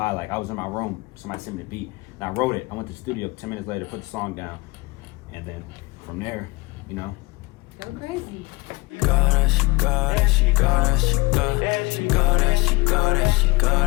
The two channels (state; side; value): quieter; right; 23.6 dB